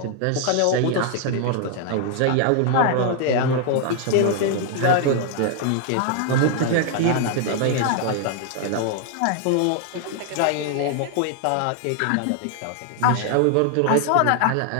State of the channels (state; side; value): different; both; correlation 0.00